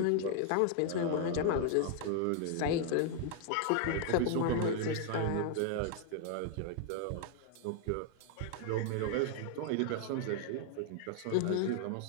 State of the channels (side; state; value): both; different; correlation 0.00